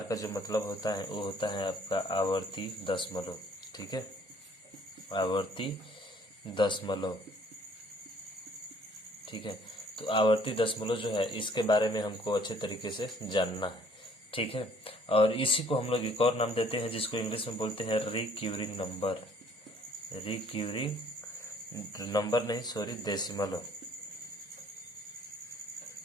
का जो मतलब होता है वो होता है आपका आवर्ती दशमलव। ठीक है, आवर्ती दशमलव। ठीक है। तो आवर्ती दशमलव जो है इसके बारे में हमको अच्छे तरीके से जानना है। ठीक है। और इसी को हम लोग एक और नाम देते हैं जिसको इंग्लिश में बोलते हैं रिक्यूरिंग नंबर। रिक्यूरिंग नंबर नहीं, सॉरी, डेसिमल।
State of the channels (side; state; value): both; normal; correlation 0.59